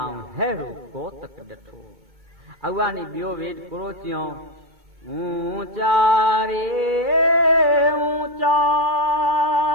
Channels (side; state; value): left; late; 2.2 ms